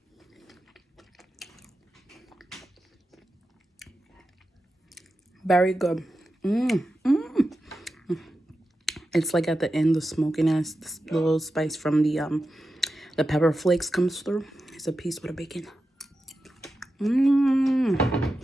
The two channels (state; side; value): normal; both; correlation 0.91